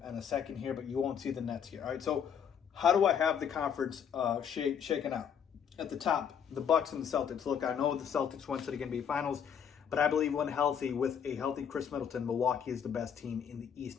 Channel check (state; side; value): quieter; right; 7.8 dB